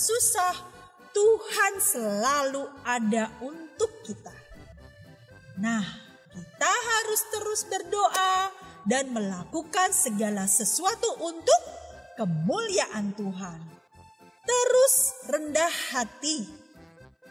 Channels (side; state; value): both; identical; correlation 1.00